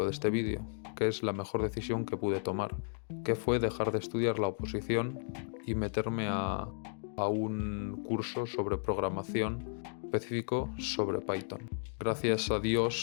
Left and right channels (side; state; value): right; silent; digital silence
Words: de este vídeo, que es la mejor decisión que pude tomar, que fue dejar de estudiar la oposición y meterme a un curso sobre programación específico sobre Python. Gracias a